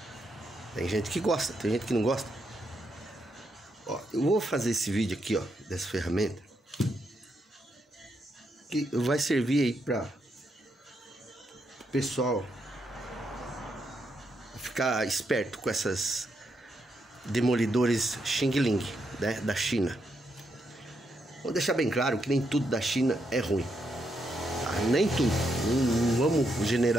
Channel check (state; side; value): normal; both; correlation 0.80